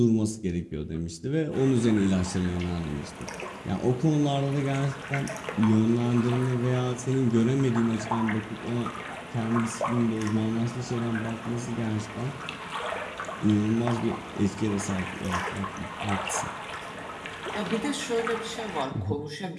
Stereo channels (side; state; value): both; identical; correlation 1.00